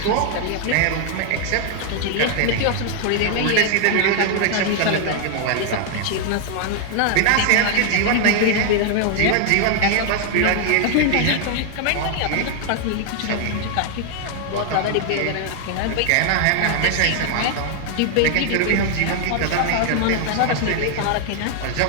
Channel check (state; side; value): different; both; correlation 0.00